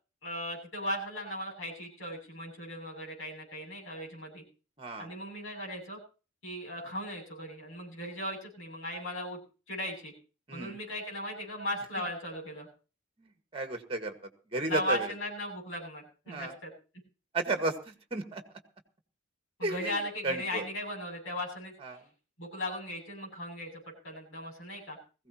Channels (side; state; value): both; normal; correlation -0.15